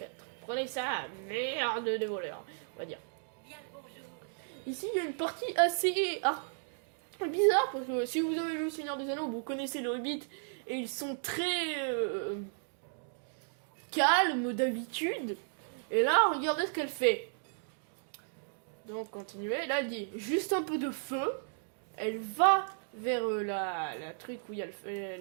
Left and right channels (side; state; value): left; silent; digital silence